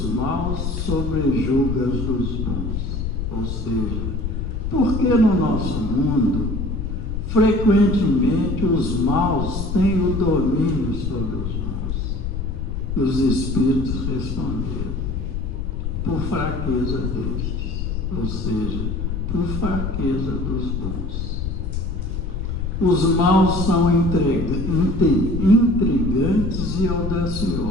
maus sobrejuga as dos bons? Ou seja, por que no nosso mundo frequentemente os maus têm o domínio sobre os bons? E os espíritos responderam: por fraqueza destes, ou seja, por fraqueza dos bons. Os maus são intrigantes e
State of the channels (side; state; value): left; noise; rumble, 3 dB below the sound